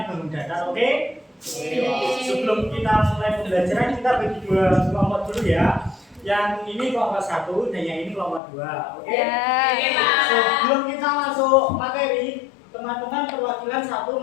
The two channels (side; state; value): right; drops out; at 8.4 s